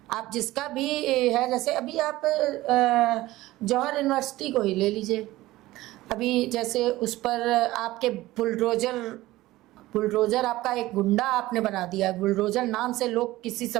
आप जिसका भी है, जैसे अभी आप जौहर यूनिवर्सिटी को ही ले लीजिए। अभी जैसे उस पर आपके बुलडोजर आपका एक गुंडा आपने बना दिया। बुलडोजर नाम से लोग किसी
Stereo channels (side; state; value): left; quieter; 17.4 dB